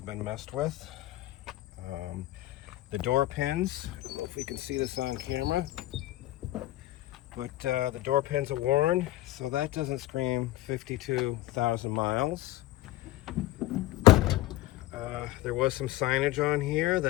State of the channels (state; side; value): quieter; right; 16.2 dB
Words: been messed with. The door pins, I don't know if we can see this on camera, but the door pins are worn, so that doesn't scream 52,000 miles. There was some signage on here